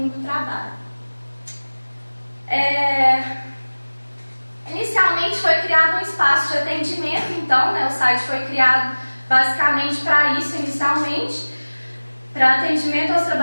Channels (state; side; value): inverted; both; correlation -1.00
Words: do trabalho. Inicialmente foi criado um espaço de atendimento, então, né, o site foi criado basicamente para isso, inicialmente, para atendimento aos